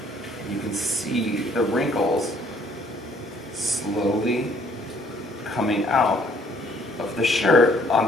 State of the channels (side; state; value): both; normal; correlation 0.62